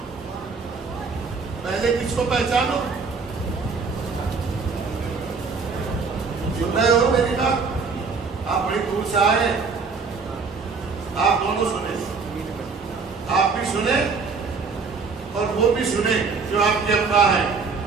پہلے کس کو پہچانو؟ سن رہے ہو میری بات؟ آپ بڑی دور سے آئے، آپ دونوں سنیں. آپ بھی سنیں اور وہ بھی سنیں جو آپ کے ابا ہیں.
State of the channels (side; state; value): left; quieter; 4.8 dB